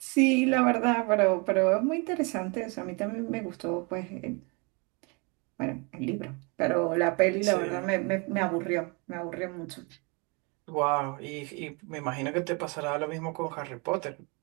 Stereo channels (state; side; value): quieter; left; 31.3 dB